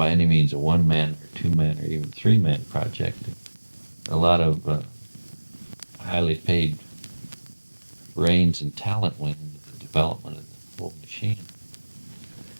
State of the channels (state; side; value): inverted; both; correlation -1.00